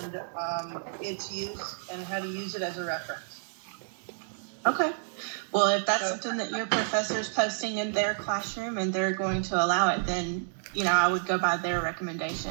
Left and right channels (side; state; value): left; silent; digital silence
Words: its use and how to use it as a reference. Okay. Well, if that's something that your professor's posting in their classroom and they're going to allow it, then, I would go by their